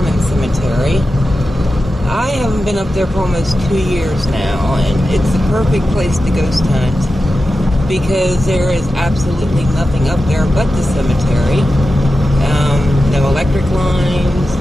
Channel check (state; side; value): normal; both; correlation 0.92